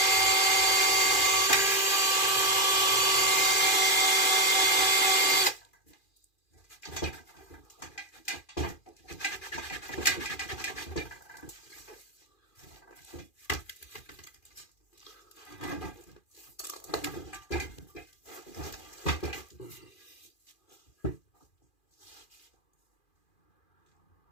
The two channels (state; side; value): late; right; 2.4 ms